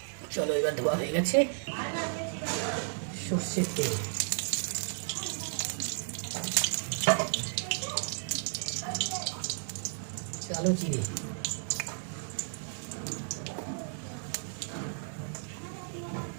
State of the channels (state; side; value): silent; left; digital silence